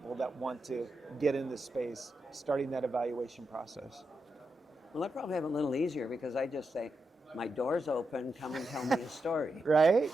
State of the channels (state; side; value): normal; both; correlation 0.86